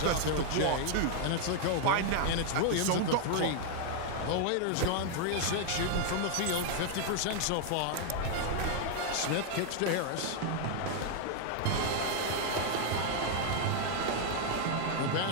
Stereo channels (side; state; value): both; different; correlation 0.00